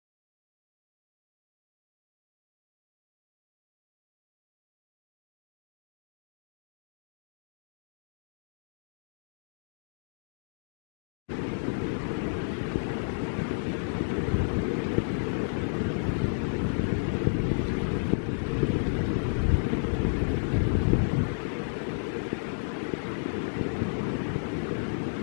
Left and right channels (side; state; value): right; silent; digital silence